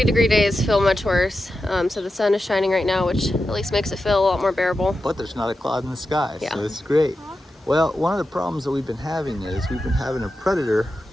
days feel much worse. So the sun is shining right now, which at least makes it feel a lot more bearable. But there's not a cloud in the sky, Yeah. so it's great. Well, one of the problems that we've been having is we've been having a predator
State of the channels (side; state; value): both; normal; correlation 0.90